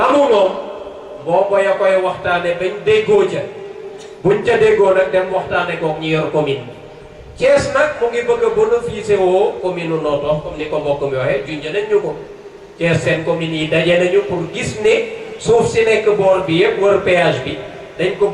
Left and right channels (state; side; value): identical; both; correlation 1.00